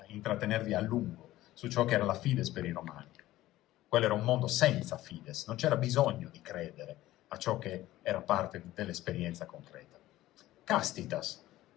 intrattenervi a lungo su ciò che era la fides per i romani. Quello era un mondo senza fides, non c'era bisogno di credere a ciò che era parte dell'esperienza concreta. Castitas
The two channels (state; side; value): quieter; right; 15.8 dB